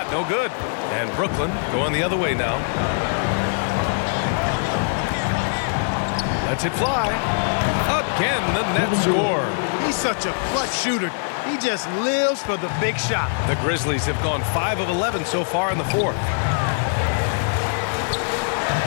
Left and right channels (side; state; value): right; silent; digital silence